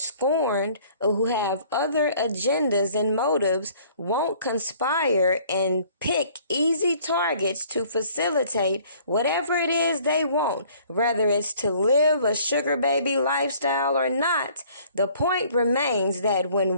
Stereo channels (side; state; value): both; inverted; correlation -0.56